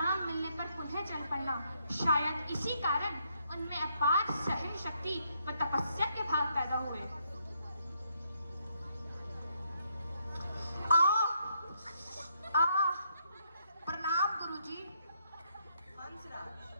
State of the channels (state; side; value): inverted; both; correlation -0.75